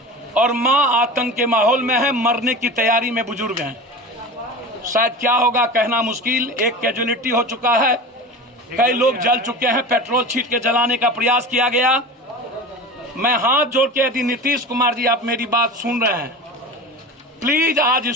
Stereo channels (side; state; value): both; normal; correlation 0.32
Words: और मां आतंक के माहौल में है, मरने की तैयारी में बुजुर्ग हैं। शायद क्या होगा कहना मुश्किल। एक कैजुअलिटी हो चुका है, कई लोग जल चुके हैं, पेट्रोल छीट के जलाने का प्रयास किया गया। मैं हाथ जोड़ के, यदि नीतीश कुमार जी आप मेरी बात सुन रहे हैं, प्लीज आज